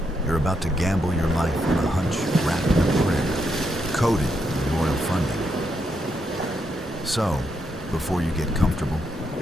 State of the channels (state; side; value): normal; both; correlation 0.80